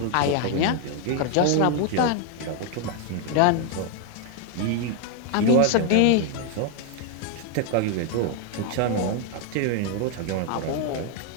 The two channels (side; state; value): both; different; correlation 0.00